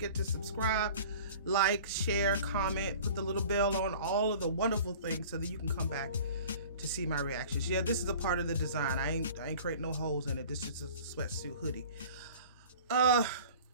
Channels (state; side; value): inverted; both; correlation -0.44